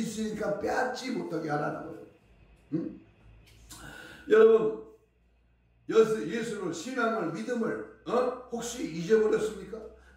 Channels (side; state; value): both; identical; correlation 1.00